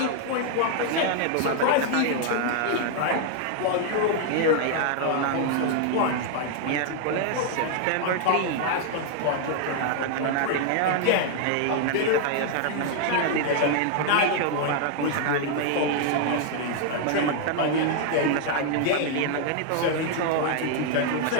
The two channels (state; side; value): different; both; correlation 0.00